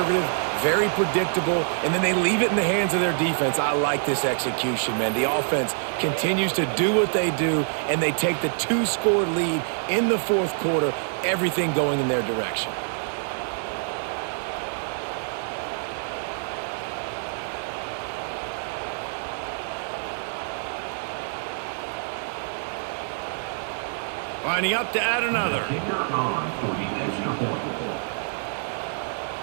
very predictable, and then they leave it in the hands of their defense. I like this execution, man. The offense continues to do what they do, and they take the 2-score lead in the 4th quarter, everything going in their direction. Lining up to add another. Kicker on for the extra point.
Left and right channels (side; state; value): left; silent; digital silence